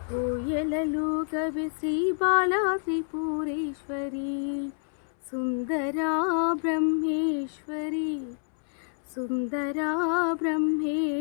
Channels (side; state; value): right; silent; 59 dB below the other